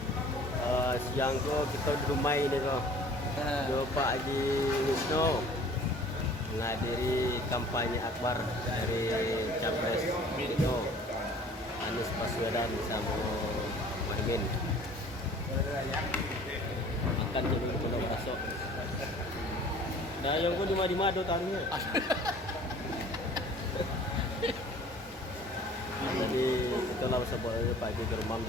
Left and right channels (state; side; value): normal; both; correlation 0.50